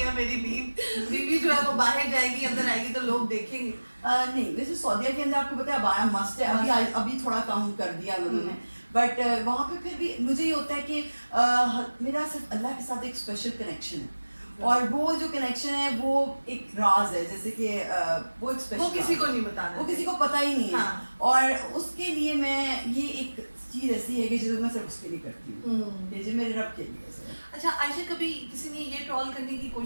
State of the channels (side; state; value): both; inverted; correlation -1.00